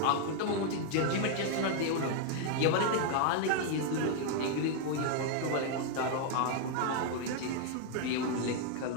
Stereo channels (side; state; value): both; different; correlation 0.00